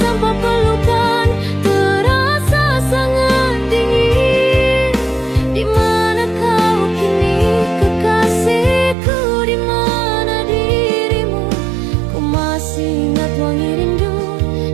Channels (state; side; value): drops out; left; at 9.0 s